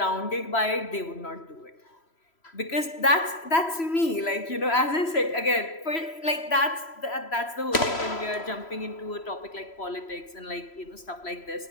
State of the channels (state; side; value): late; right; 3.0 ms